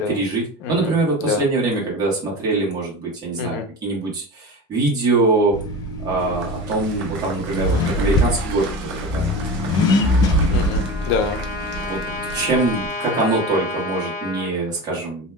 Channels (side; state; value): both; normal; correlation 0.28